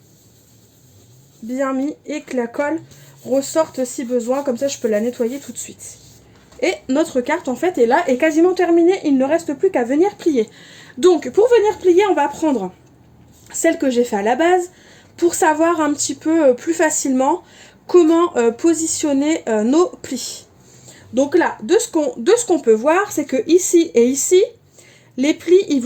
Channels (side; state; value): both; identical; correlation 1.00